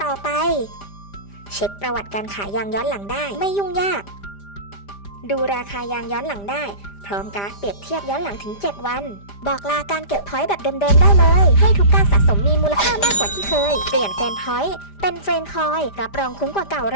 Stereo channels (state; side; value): late; right; 5.0 ms